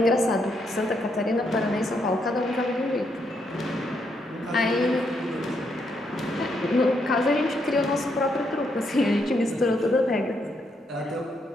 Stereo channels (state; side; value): normal; both; correlation 0.77